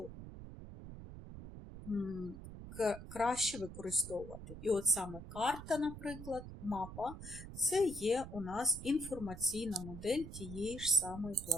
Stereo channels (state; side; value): noise; right; rumble, 12 dB below the sound